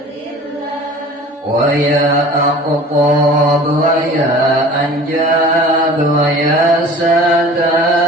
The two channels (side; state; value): both; normal; correlation 0.43